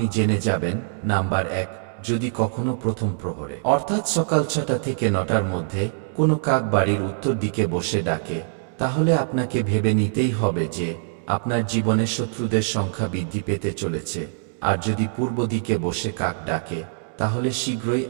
জেনে যাবেন। নাম্বার 1, যদি কখনো প্রথম প্রহরে অর্থাৎ সকাল 6টা থেকে 9টার মধ্যে কোনো কাক বাড়ির উত্তর দিকে বসে ডাকে, তাহলে আপনাকে ভেবে নিতেই হবে যে আপনার জীবনে শত্রুদের সংখ্যা বৃদ্ধি পেতে চলেছে। আর যদি পূর্ব দিকে বসে কাক ডাকে, তাহলে শীঘ্রই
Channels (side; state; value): left; silent; digital silence